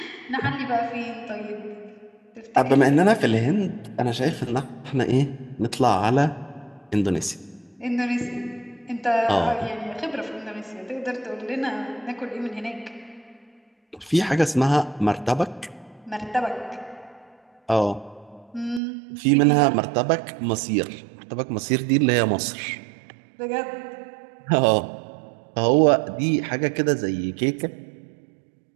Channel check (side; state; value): left; drops out; at 18.8 s